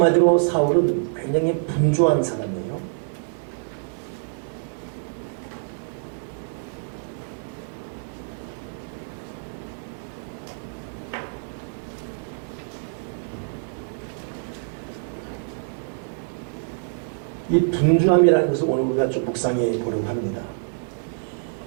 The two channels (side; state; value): left; silent; 61 dB below the other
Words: 사울은 굉장히 분주한 사람이에요. 이 분주함이라는 것을 오늘 우리가 좀 묵상해 보려고 합니다.